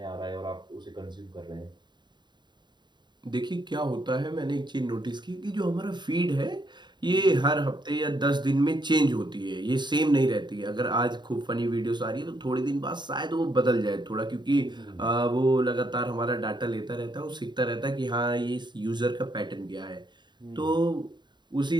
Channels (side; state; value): left; late; 0.22 ms